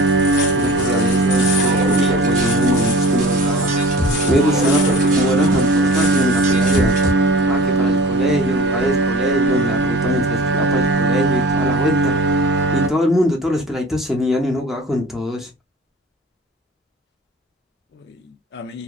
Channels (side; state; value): both; normal; correlation 0.41